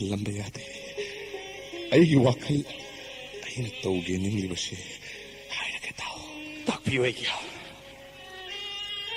ꯌꯥꯗꯦ ꯑꯩꯒꯤ ꯋꯥꯈꯜ ꯑꯩꯅ ꯇꯧꯒꯦ ꯅꯤꯡꯂꯤꯕꯁꯦ ꯍꯥꯏꯔꯒ ꯇꯥꯎ ꯇꯥꯛꯄꯤꯌꯨ ꯑꯩꯒꯤ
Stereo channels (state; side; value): identical; both; correlation 1.00